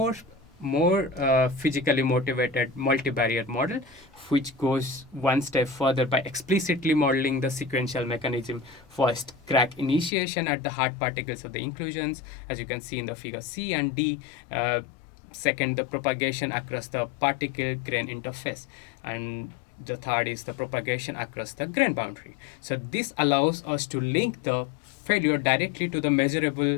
physically motivated multivariate model, which goes one step further by explicitly modeling the sequential mechanism. First, crack initiation at the hard particles of the inclusions, as you can see in the figure C and D. Second, the propagation across the particle grain interface, and the third is the propagation across the grain boundary. So this allows us to link the failure directly to the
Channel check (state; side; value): drops out; right; at 10.1 s